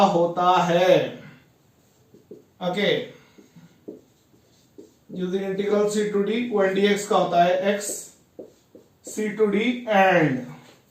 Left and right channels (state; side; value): identical; both; correlation 1.00